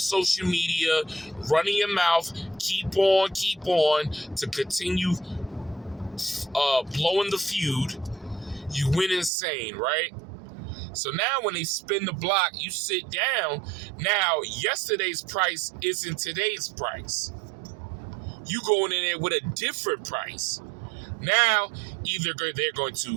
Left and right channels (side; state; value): left; drops out; at 9.3 s